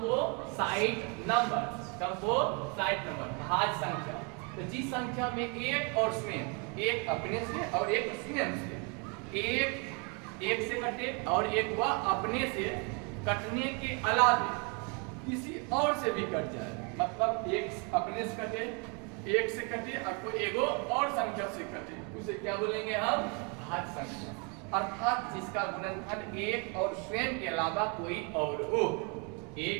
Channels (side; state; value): left; quieter; 34.2 dB